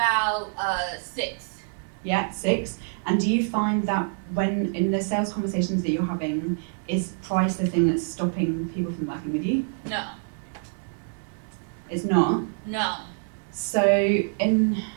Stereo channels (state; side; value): silent; left; digital silence